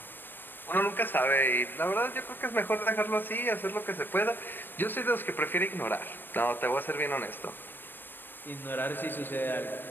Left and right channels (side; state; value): right; late; 0.095 ms